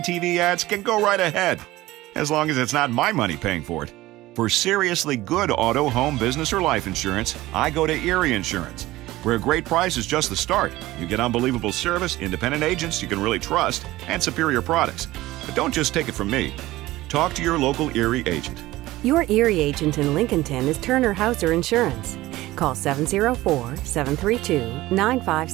TV ads can go right ahead, as long as it's not my money paying for it. For seriously good auto, home, business, or life insurance, I go to Erie Insurance, where a great price is just the start. You get unbelievable service, independent agents you can really trust, and superior products. But don't just take it from me. Talk to your local Erie agent. Your Erie agent in Lincolnton is Turner Hauser Insurance. Call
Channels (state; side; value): quieter; left; 17.5 dB